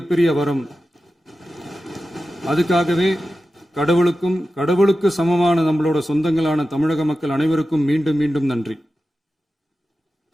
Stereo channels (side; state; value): both; normal; correlation 0.93